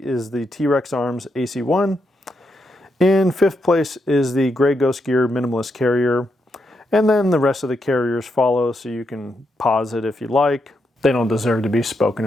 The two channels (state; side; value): normal; both; correlation 0.82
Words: is the T-Rex Arms AC1. In fifth place is the Grey Ghost Gear Minimalist Carrier. And then the rest of the carriers follow, so you can pause it if you like. They don't deserve to be spoken